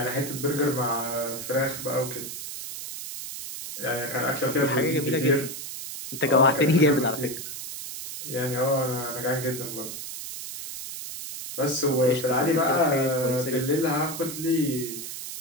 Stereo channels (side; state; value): right; noise; hiss, 8 dB below the sound